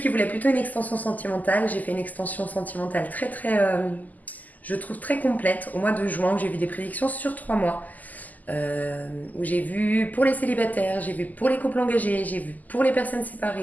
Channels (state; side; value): late; right; 0.081 ms